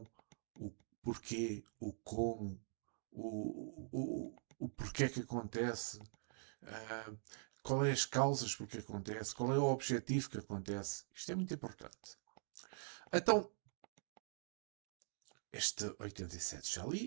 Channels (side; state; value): left; silent; digital silence